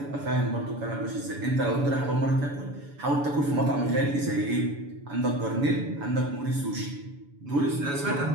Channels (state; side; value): late; left; 7.0 ms